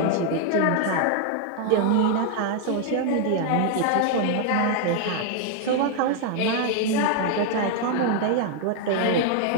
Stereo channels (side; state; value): both; different; correlation 0.00